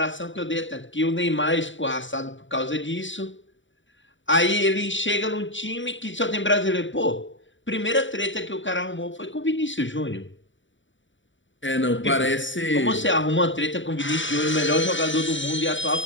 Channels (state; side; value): late; right; 0.55 ms